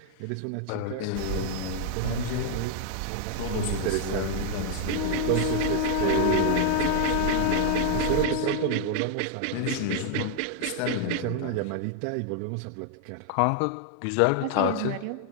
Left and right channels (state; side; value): different; both; correlation 0.00